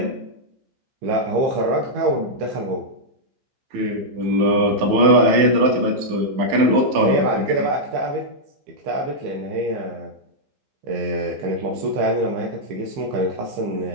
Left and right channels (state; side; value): late; left; 15 ms